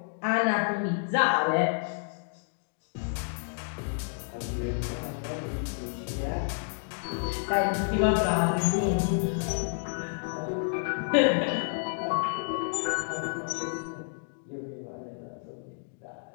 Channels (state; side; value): silent; right; digital silence